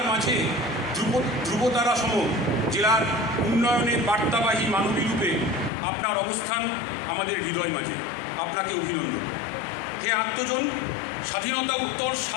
মাঝে ধ্রুবতারা সম জেলার উন্নয়নের বার্তাবাহী মানবী রূপে আপনার অবস্থান আমাদের হৃদয় মাঝে। আপনাকে অভিনন্দন। হে আত্মজন, স্বাধীনতা উত্তর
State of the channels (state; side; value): drops out; right; at 5.7 s